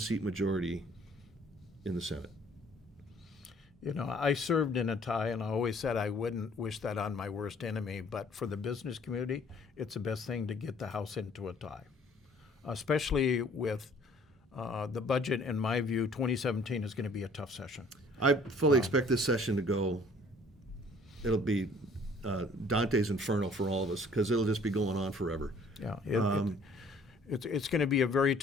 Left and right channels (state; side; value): normal; both; correlation 0.56